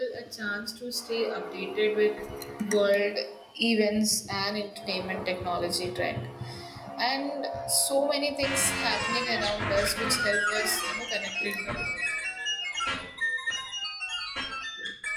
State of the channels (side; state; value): both; identical; correlation 1.00